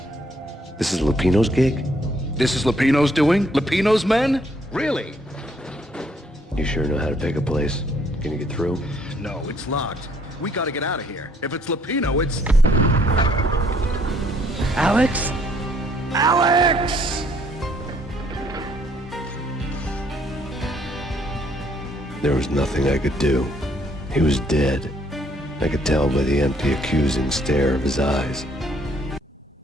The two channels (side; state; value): both; normal; correlation 0.65